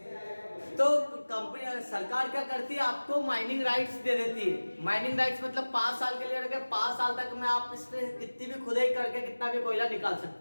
तो कंपनी सरकार क्या करती है? आपको माइनिंग राइट्स दे देती है। माइनिंग राइट्स मतलब 5 साल के लिए रखे, 5 साल तक में आप इसमें कितनी भी खुदाई करके कितना भी कोयला निकाल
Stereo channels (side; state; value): both; inverted; correlation -1.00